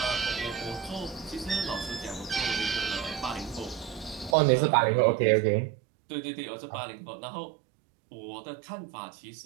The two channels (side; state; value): left; drops out; at 4.4 s